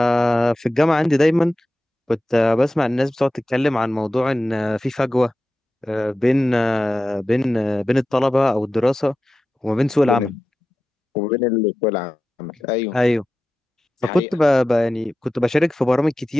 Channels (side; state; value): both; normal; correlation 0.93